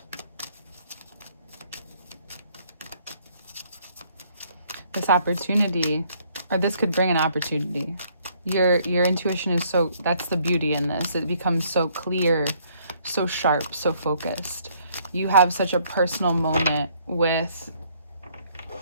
this opportunity, or this could bring an opportunity. Your intuition is so, that's the beauty in this. It becomes so clear, so sharp, so focused. You have such a personal moment with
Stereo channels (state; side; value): inverted; both; correlation -0.65